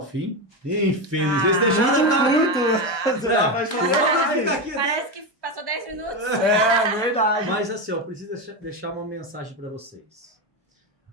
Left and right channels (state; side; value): normal; both; correlation 0.14